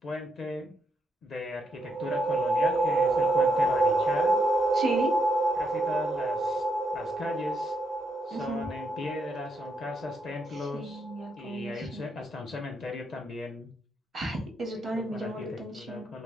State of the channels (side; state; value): both; normal; correlation 0.78